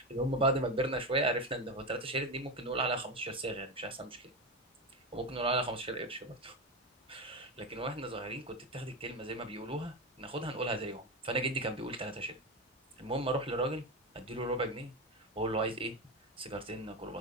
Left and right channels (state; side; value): normal; both; correlation 0.17